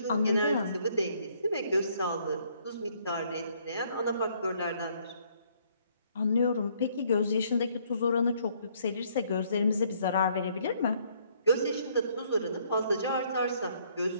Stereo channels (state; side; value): inverted; both; correlation -0.66